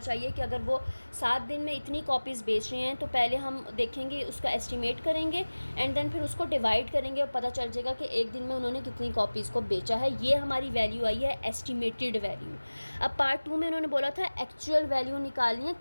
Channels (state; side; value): inverted; both; correlation -1.00